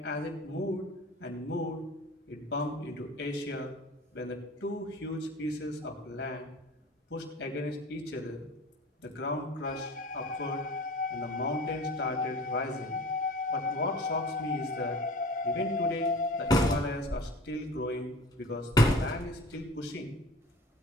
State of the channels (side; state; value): both; normal; correlation 0.40